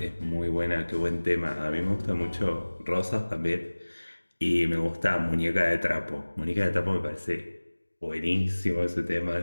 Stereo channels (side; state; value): both; inverted; correlation -1.00